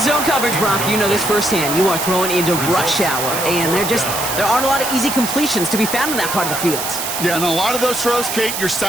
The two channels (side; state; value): right; noise; hiss, 4 dB below the sound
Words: zone coverage, Brock. You know this firsthand. You are throwing into rush hour, and there aren't a lot of easy completions to be found in that part of the field. Yeah, and a lot of those throws, Kate, you're